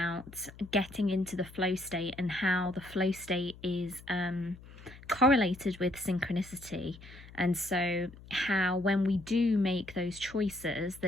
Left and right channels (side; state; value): left; noise; hum, 19 dB below the sound